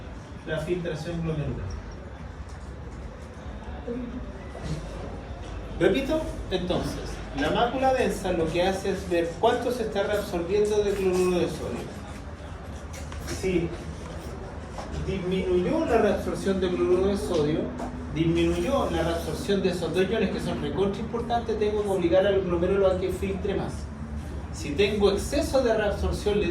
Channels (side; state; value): both; identical; correlation 1.00